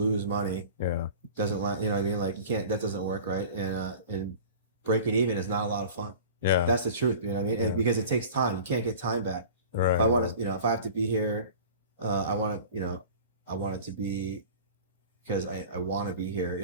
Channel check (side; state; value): both; inverted; correlation -0.40